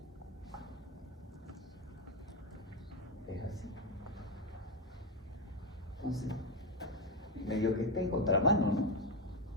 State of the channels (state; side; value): normal; both; correlation 0.08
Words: es así. Entonces, medio que está en contramano, ¿no?